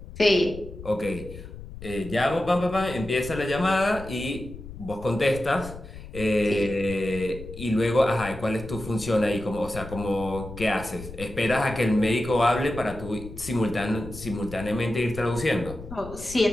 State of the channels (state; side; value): noise; left; rumble, 13 dB below the sound